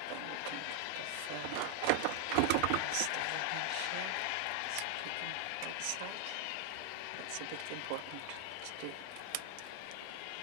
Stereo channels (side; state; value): both; different; correlation 0.01